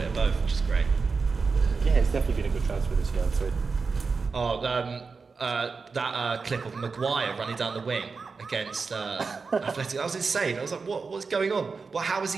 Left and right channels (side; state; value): left; quieter; 4.7 dB